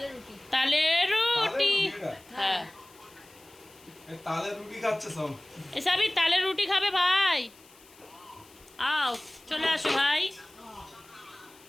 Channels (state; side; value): noise; left; hiss, 25 dB below the sound